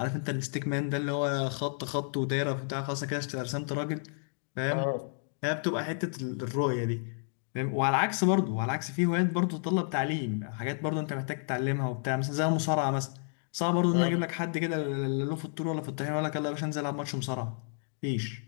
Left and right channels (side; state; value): right; silent; 57 dB below the other